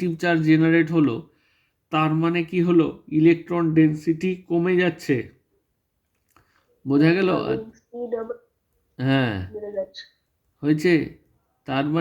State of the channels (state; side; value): identical; both; correlation 1.00